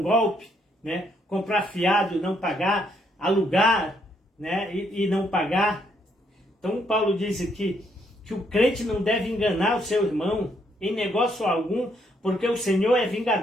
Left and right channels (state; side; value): normal; both; correlation 0.72